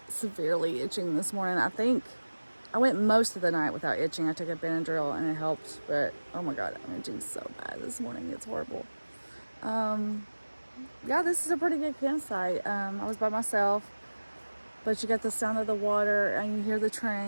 severely itching this morning. I think I went most of the night without itching. I took a Benadryl and it helped, but oh my God, I'm itching so bad this morning. It's horrible. Yeah, this is a pretty good campsite. I was by myself, but you got the sound of the water and you hear the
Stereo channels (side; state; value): both; inverted; correlation -1.00